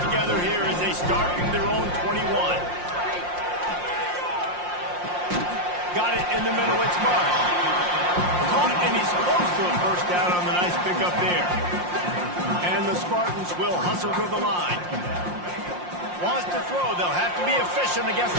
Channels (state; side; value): late; left; 5.6 ms